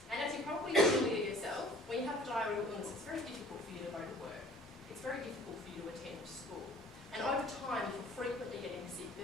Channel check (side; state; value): both; normal; correlation 0.51